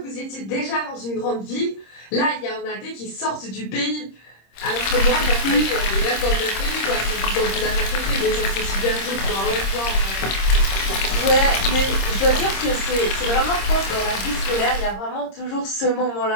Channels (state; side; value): late; right; 26 ms